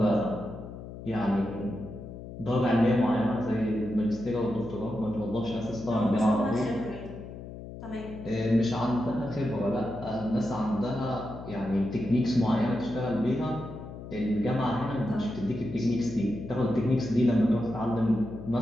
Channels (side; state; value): left; noise; hum, 12 dB below the sound